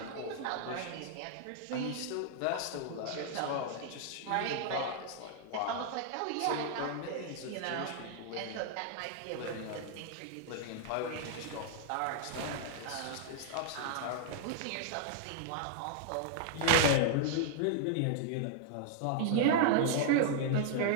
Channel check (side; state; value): both; different; correlation -0.01